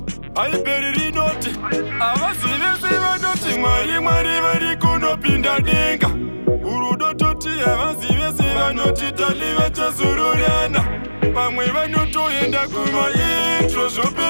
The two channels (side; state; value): both; inverted; correlation -1.00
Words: aiperirinote avazivese vanoti mwari vari kunopinda denga urudo toti avazivese vanoti talive chazororana vamwe vanotoenda kumaintro